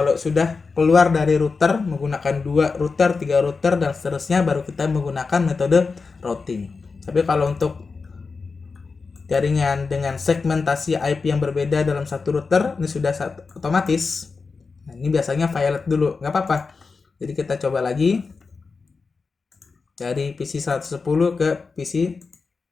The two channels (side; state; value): right; quieter; 4.6 dB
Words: sudah keluar dari router menggunakan 2 router, 3 router dan seterusnya baru kita menggunakan metode routing. Tapi kalau untuk jaringan dengan segmentasi IP yang berbeda dalam satu router ini sudah otomatis. Nah, ini biasanya violet dulu, nggak apa-apa. Jadi kita coba lagi dari PC 110 ke PC